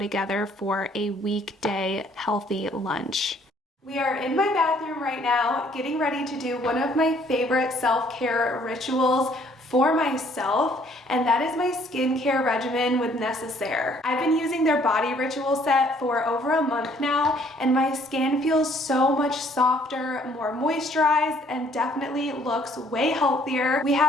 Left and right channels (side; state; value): both; normal; correlation 0.62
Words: for a weekday healthy lunch. We are in my bathroom right now, getting ready to do one of my favorite self-care rituals for myself, and that is my skincare regimen with Necessaire. I've been using their body ritual set for over a month now, and my skin feels so much softer, more moisturized, and definitely looks way healthier. We